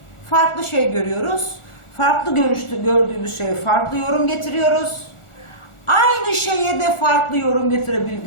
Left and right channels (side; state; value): right; late; 1.4 ms